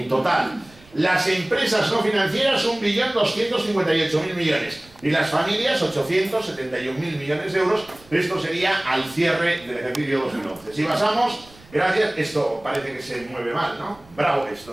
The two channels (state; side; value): noise; right; rumble, 26 dB below the sound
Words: total. Las empresas no financieras, 1.258.000 millones. Y las familias, 871.000 millones de euros. Esto sería al cierre del ejercicio 2011. Si pasamos, gracias, esto parece que se mueve mal, ¿no? Bravo, esto